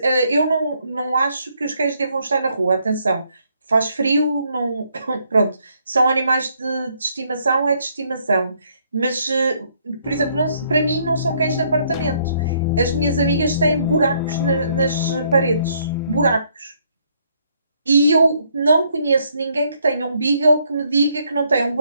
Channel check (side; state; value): both; inverted; correlation -0.70